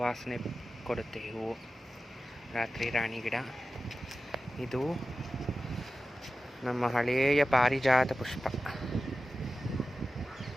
ಕೊಡುತ್ತೆ ಹೂವು. ರಾತ್ರಿ ರಾಣಿ ಗಿಡ. ಇದು ನಮ್ಮ ಹಳೆಯ ಪಾರಿಜಾತ ಪುಷ್ಪ.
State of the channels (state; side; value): normal; both; correlation 0.94